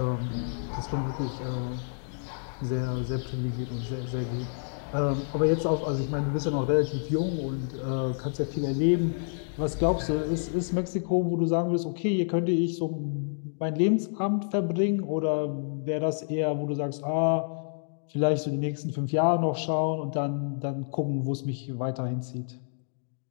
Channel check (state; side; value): silent; right; digital silence